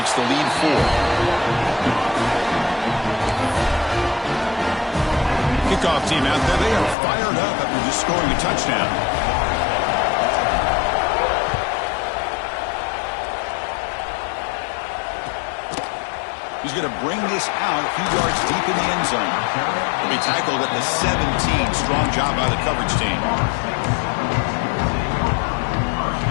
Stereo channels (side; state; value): right; drops out; at 7.0 s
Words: the lead 4. Kickoff team out there. They are fired up after just scoring a touchdown. He's going to bring this out a few yards deep in the end zone. He'll be tackled at the 17. Strong job by the coverage team.